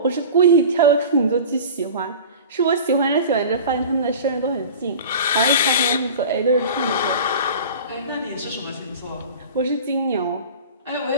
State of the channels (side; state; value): both; inverted; correlation -0.36